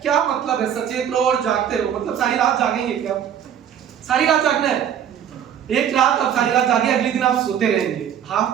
क्या मतलब है सचेत रहो और जागते रहो? मतलब सारी रात जागेंगे क्या? सारी रात जागना है। एक रात आप सारी रात जागे, अगले दिन आप सोते रहेंगे,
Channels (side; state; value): left; quieter; 9.2 dB